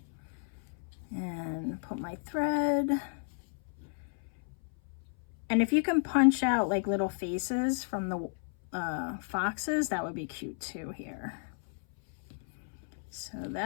and put my thread. And if you can punch out like little faces from the foxes, that would be cute too here. So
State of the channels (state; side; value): silent; right; 56 dB below the other